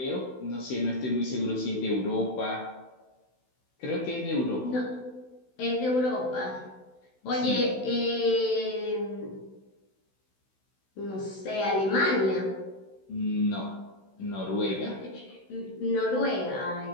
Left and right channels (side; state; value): right; late; 16 ms